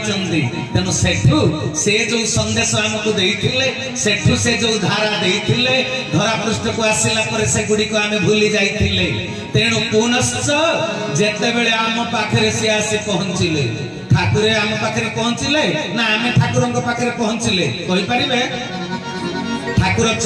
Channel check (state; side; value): identical; both; correlation 1.00